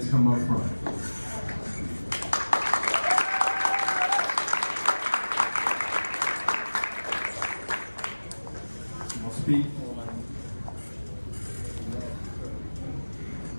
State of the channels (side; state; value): both; inverted; correlation -1.00